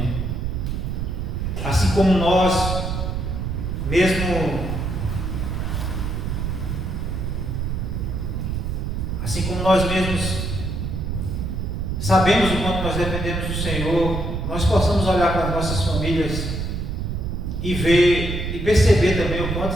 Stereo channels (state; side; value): noise; right; rumble, 2 dB below the sound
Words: assim como nós mesmos sabemos o quanto nós dependemos do Senhor, nós possamos olhar para as nossas famílias e ver e perceber também o quanto